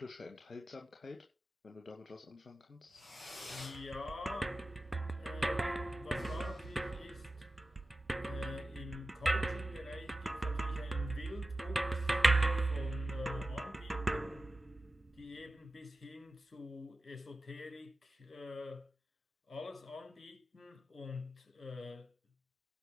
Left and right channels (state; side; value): normal; both; correlation 0.94